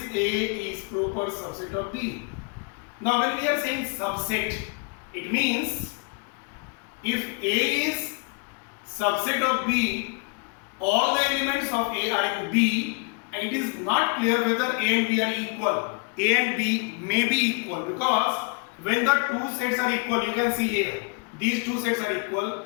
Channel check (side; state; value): right; quieter; 34.1 dB